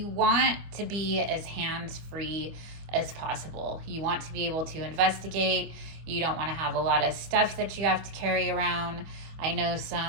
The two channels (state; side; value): late; left; 25 ms